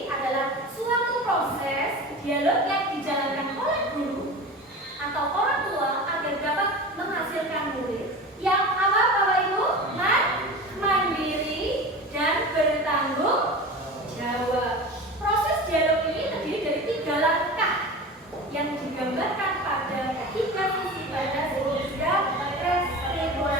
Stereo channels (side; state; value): both; normal; correlation 0.32